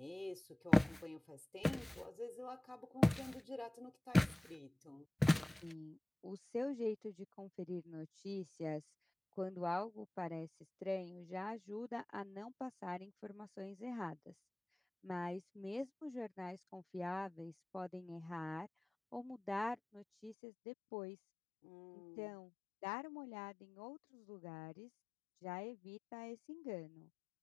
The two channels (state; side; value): drops out; right; at 20.4 s